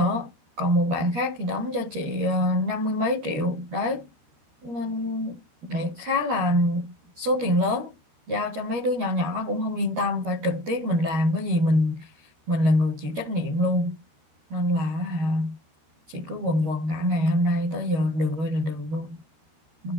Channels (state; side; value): late; left; 13 ms